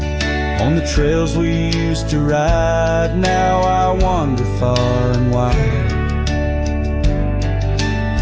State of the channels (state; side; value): identical; both; correlation 1.00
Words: On the trails we used to ride, now I wander far and wide.